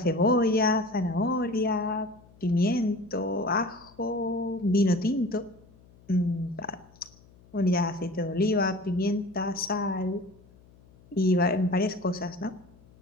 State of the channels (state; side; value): noise; left; hum, 27 dB below the sound